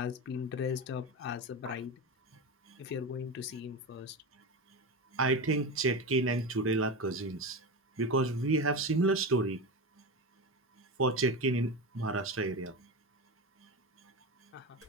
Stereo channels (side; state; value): both; normal; correlation 0.21